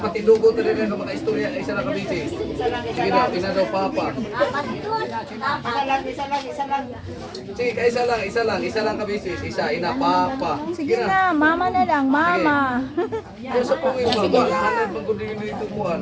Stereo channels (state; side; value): identical; both; correlation 1.00